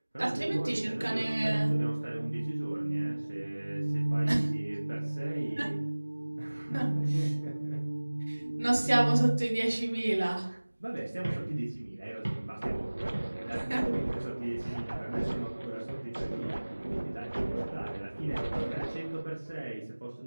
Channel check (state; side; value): inverted; both; correlation -1.00